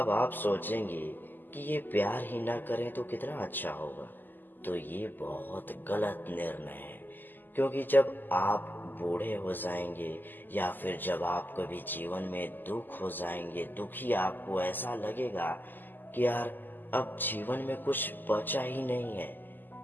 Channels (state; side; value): late; right; 0.089 ms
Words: आप सोचेंगे कि ये प्यार ही ना करें तो कितना अच्छा होगा। तो ये बहुत गलत निर्णय है। क्योंकि जब आप बूढ़े हो जाएंगे या फिर जब आप कभी जीवन में दुख हो जाएंगे, दुखी, आपको ऐसा लगेगा कि यार अब जीवन में कुछ बचा ही नहीं है,